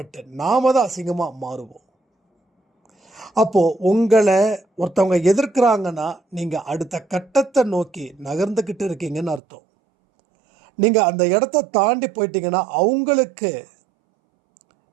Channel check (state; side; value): drops out; left; at 9.4 s